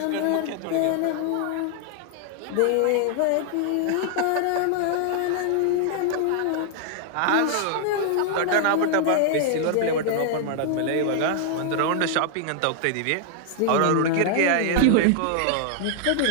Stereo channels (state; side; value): different; both; correlation 0.00